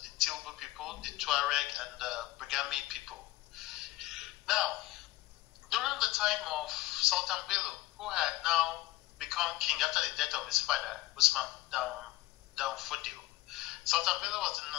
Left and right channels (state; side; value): quieter; right; 18.5 dB